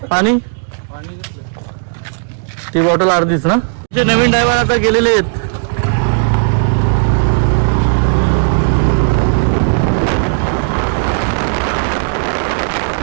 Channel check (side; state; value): left; silent; digital silence